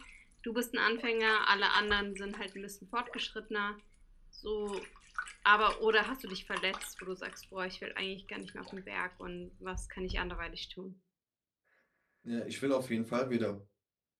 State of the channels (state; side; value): identical; both; correlation 1.00